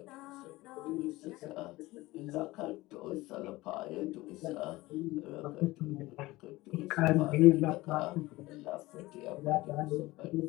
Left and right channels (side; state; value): right; quieter; 19.5 dB